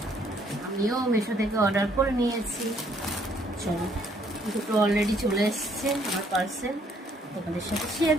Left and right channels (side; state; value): both; normal; correlation 0.66